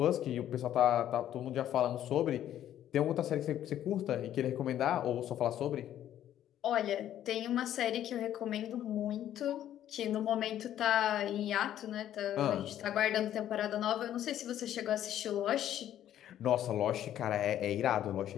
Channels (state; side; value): quieter; right; 11.5 dB